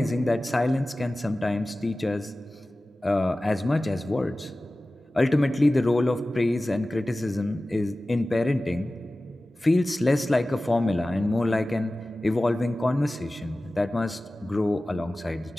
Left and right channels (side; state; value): both; normal; correlation 0.96